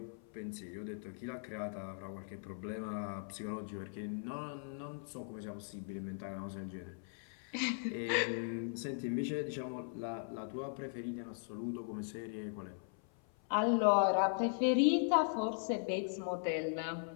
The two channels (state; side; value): silent; right; 52 dB below the other